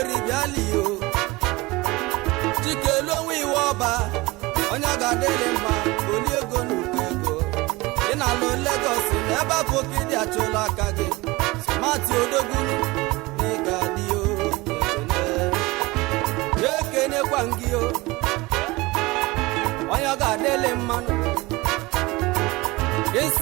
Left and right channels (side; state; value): left; quieter; 22.0 dB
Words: bịali yo chikelu onwe iwọba onye ọ ga-adịlị mma oli ego n'ukwu ego ị na-alụ Lagos na ebe afọ ka ịdị achụla aka gị sụmatụ odogwu na ị ga-adị yo ekenekwa gị yo onye ọ ga-adịlị mmanụ